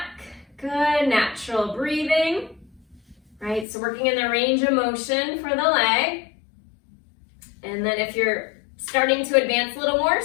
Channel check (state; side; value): drops out; right; at 3.7 s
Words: Good, natural breathing. Right, so working in the range of motion for the leg. And then if you're starting to advance a little more,